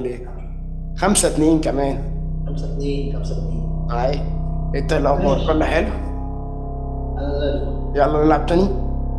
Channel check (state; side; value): identical; both; correlation 1.00